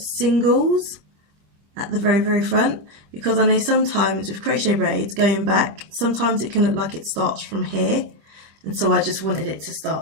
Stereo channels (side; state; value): left; late; 25 ms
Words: at the very, very front, because I know sometimes with crochet braids going back, sometimes it can look like it starts from here. And so I just wanted it to